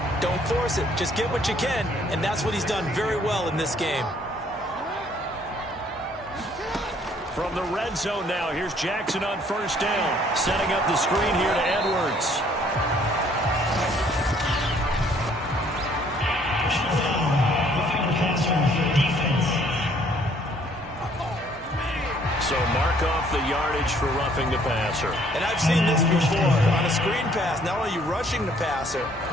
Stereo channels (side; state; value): both; normal; correlation 0.62